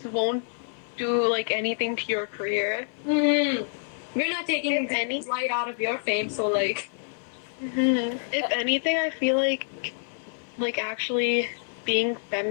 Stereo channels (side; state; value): right; silent; 55 dB below the other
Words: won't do like anything to your career. We're not taking If any- light out of your fame, so, like... If anything, I feel like actually being